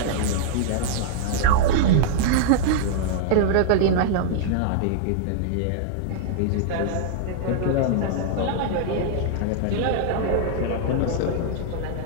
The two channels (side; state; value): both; different; correlation -0.01